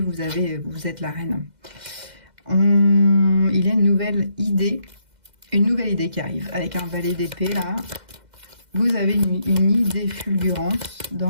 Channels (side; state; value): left; late; 2.1 ms